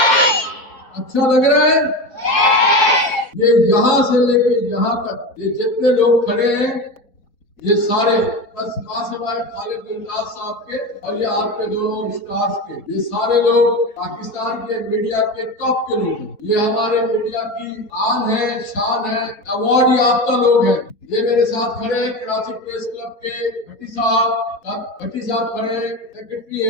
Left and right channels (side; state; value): right; late; 4.1 ms